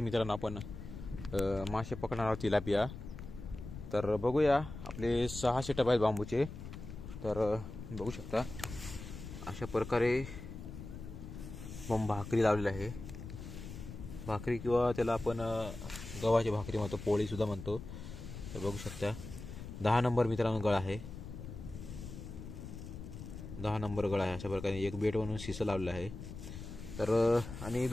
मित्रांनो आपण मासे पकडणार आहोत, तिलापिया. तर बघूया, आपले 6 सेटअप आहेत बांबूचे. तर बघू शकता अशा प्रकारे भाकरी लावलेली आहे. भाकरी किंवा त्याला आपण गव्हाची भाकरी म्हणतो, पोळी सुद्धा म्हणतो. तर बघू शकता 10 नंबर मित्रांनो गळ आहे. 10 नंबर गळ आहे. अशा प्रकारे एक बेट म्हणून शिसं लावलेलं आहे. तर आणि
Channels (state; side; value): noise; left; rumble, 10 dB below the sound